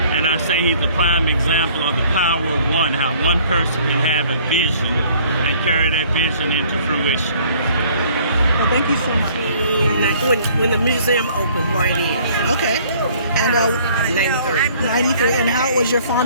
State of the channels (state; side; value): inverted; both; correlation -0.57